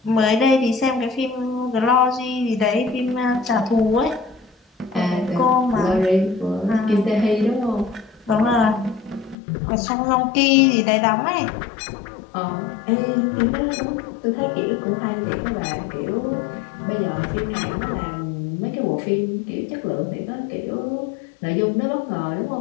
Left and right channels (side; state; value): right; drops out; at 9.3 s